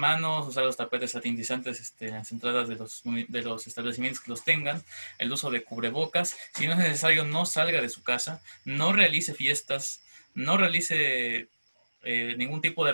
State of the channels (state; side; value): inverted; both; correlation -1.00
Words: usar los tapetes satinizantes en las entradas de los establecimientos que los tengan, el uso de cubrebocas. Si no es necesario, no salga de su casa, no realice fiestas, no realice ningún tipo de